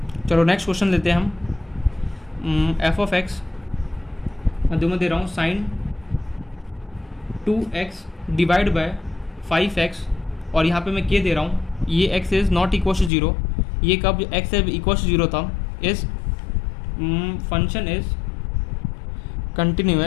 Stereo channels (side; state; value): right; drops out; at 13.1 s